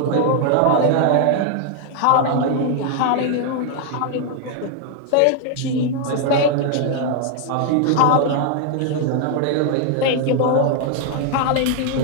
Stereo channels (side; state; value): both; different; correlation 0.00